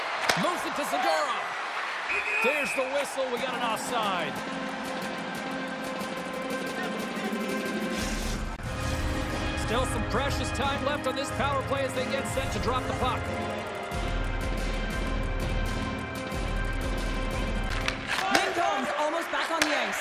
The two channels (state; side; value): identical; both; correlation 1.00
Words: Moves it to Segura. There's the whistle. We got an offside. Still some precious time left on this power play as they get set to drop the puck. Almost back on the